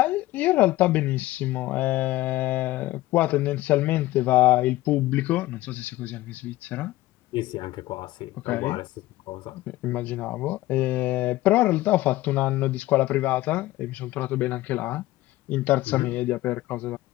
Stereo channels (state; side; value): quieter; right; 17.1 dB